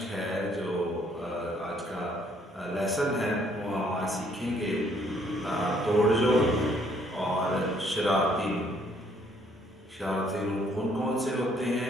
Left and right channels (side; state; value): both; normal; correlation 0.65